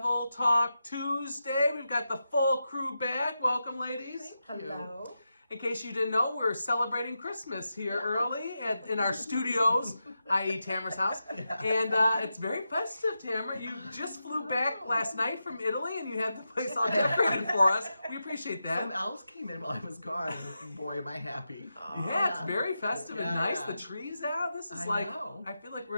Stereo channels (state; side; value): inverted; both; correlation -0.89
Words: Talk Tuesday. We've got the full crew back. Welcome, ladies. Thank you. Hello. In case you didn't know, we're celebrating Christmas here early in our studios, i.e. Tamara's house. Yeah. And it's very festive, Tamara. You just flew back last night from Italy and you had the place all decorated for us. We appreciate that. Some elves came in while I was gone. Boy, am I happy. Yeah, it's very festive and Yeah, nice. yeah. The trees out. This is I know. I feel like